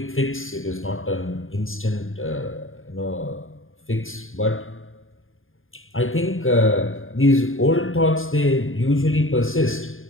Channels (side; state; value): right; late; 0.59 ms